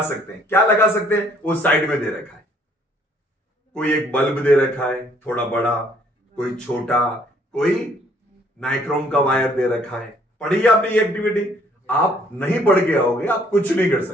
सकते हैं। क्या लगा सकते हैं? वो साइड में दे रखा है। कोई एक बल्ब दे रखा है थोड़ा बड़ा, कोई छोटा, कोई नाइक्रोम का वायर दे रखा है। पढ़िए आपने ये एक्टिविटी, आप नहीं पढ़ के आओगे आप कुछ नहीं कर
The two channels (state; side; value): normal; both; correlation 0.62